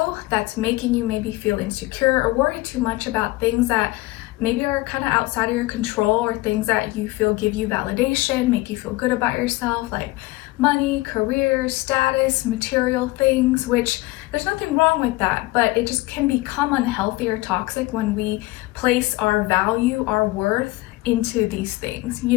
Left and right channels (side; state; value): right; quieter; 20.1 dB